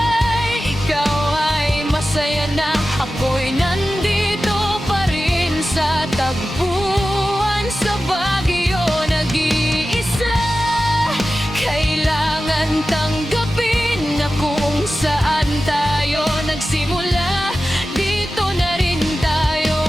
ikaw ay masaya na. Ako'y nandito pa rin sa tagpuan. Sa Baguio nag-iisa, kailangan tanggapin na kung saan tayo nagsimula, dito na rin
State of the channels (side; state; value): both; normal; correlation 0.94